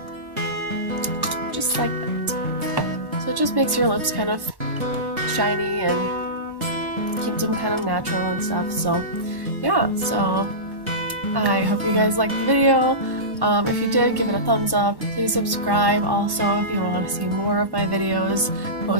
Just like that. So it just makes your lips kind of shiny and keeps them kind of natural and stuff. So yeah, so I hope you guys liked the video. If you did, give it a thumbs up. Please subscribe. Also, if you want to see more of my videos,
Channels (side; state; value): left; late; 1.1 ms